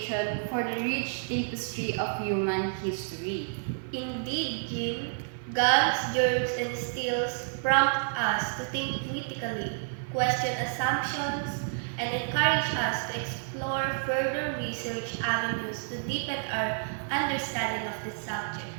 for the rich tapestry of human history. Indeed, Jean, guns, germs, and steels prompt us to think critically, question assumptions, and encourage us to explore further research avenues to deepen our understanding of the subject.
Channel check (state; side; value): silent; left; 56 dB below the other